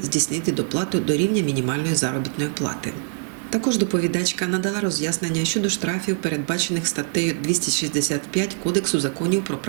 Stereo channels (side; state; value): left; silent; 60 dB below the other